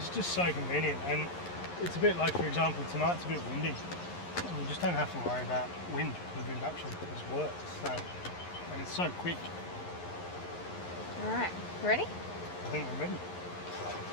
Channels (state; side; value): late; right; 11 ms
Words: just so convenient. And it's a bit like, for example, tonight's a bit windy. You just don't have to worry about wind with induction, it just works. So, and it's so quick. Alright, ready? I think I'm ready.